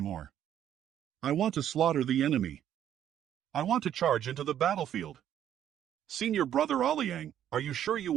I want to slaughter the enemy. I want to charge into the battlefield. Senior Brother Oliang, are you sure you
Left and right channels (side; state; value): left; quieter; 10.5 dB